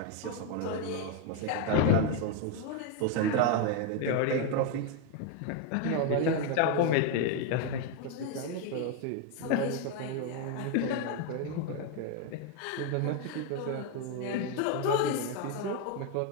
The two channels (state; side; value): different; both; correlation 0.01